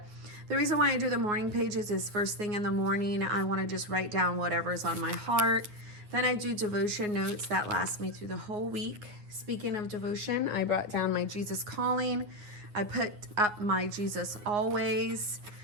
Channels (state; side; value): late; left; 9.5 ms